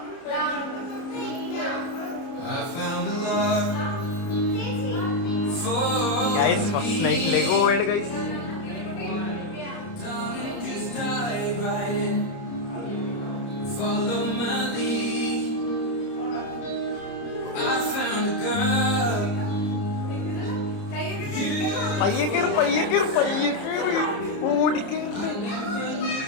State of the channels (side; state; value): right; late; 30 ms